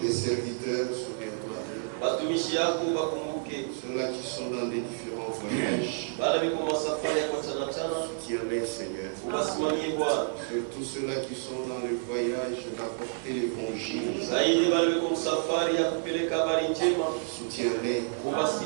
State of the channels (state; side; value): silent; left; 58 dB below the other